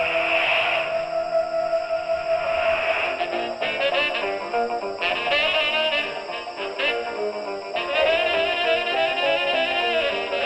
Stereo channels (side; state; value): both; identical; correlation 1.00